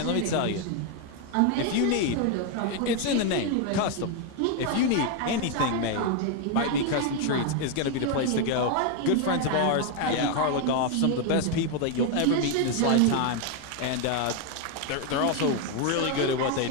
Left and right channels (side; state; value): both; different; correlation 0.01